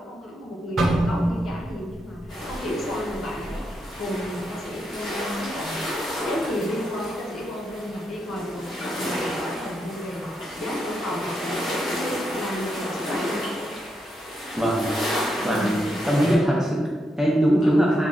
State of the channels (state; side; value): normal; both; correlation 0.82